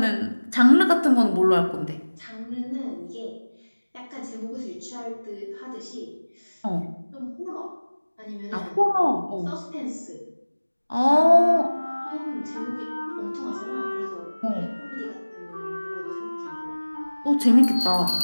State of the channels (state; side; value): inverted; both; correlation -1.00